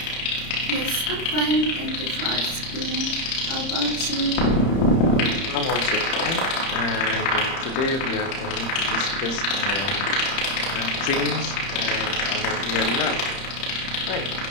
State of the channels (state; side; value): late; right; 30 ms